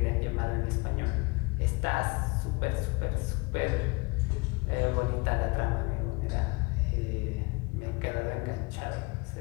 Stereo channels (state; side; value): quieter; right; 26.9 dB